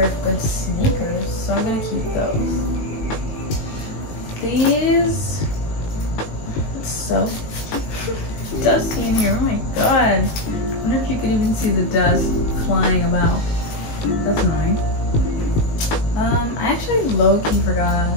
good sneakers, so I'm gonna keep those. These, it's so dusty in here, oh my god. I wonder if you could even see the dust flying about. That's annoying. I actually low-key forgot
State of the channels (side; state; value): right; late; 19 ms